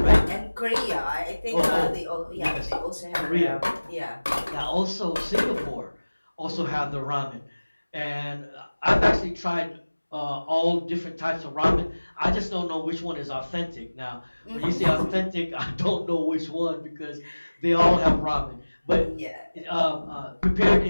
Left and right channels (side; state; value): both; inverted; correlation -1.00